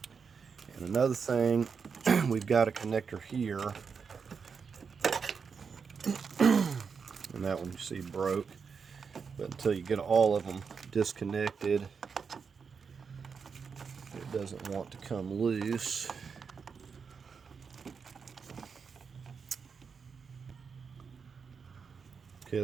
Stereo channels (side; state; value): left; quieter; 5.8 dB